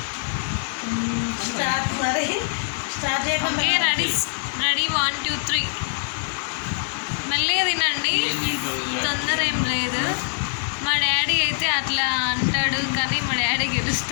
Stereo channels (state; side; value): silent; right; digital silence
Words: స్టార్ట్ చేయకుండా రెడీ 1 2 3 మెల్లగా తినండి, తొందర ఏం లేదు. మా డాడీ అయితే అట్లా అంటాడు కానీ మా డాడీ